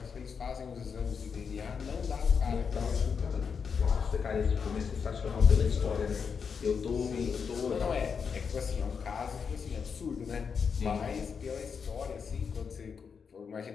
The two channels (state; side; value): quieter; right; 6.2 dB